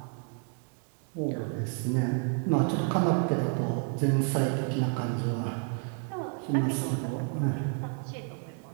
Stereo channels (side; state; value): left; quieter; 39.3 dB